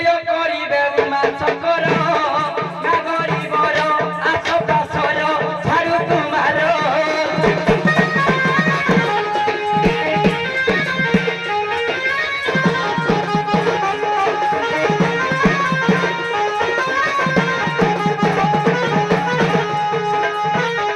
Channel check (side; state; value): both; identical; correlation 1.00